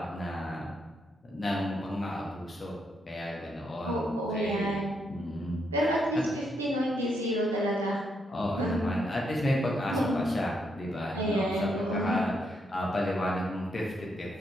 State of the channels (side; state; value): both; normal; correlation 0.78